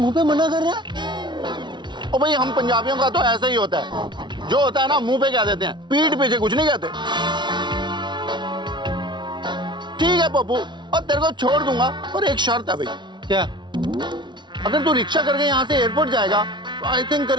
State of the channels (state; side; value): late; left; 0.22 ms